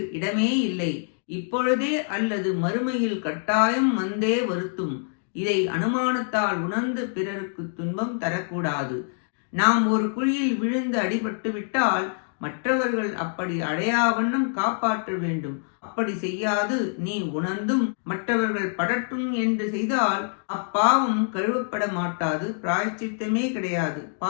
இடமே இல்லை. இப்பொழுதே அல்லது மறுமையில் கட்டாயம் வந்தே வருத்தும். இதை அனுமானத்தால் உணர்ந்து பிறருக்கு துன்பம் தரக்கூடாது. நாம் ஒரு குழியில் விழுந்து அடிபட்டு விட்டால் மற்றவர்கள் அப்படி அடையாவண்ணம் காப்பாற்ற வேண்டும். அப்படி செய்யாது நீ உணர்ந்தும் மற்றவர்கள் படட்டும் என்று செய்தால் அப்பாவம் கழுவப்பட மாட்டாது, பிராயச்சித்தமே கிடையாது.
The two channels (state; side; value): silent; right; 61 dB below the other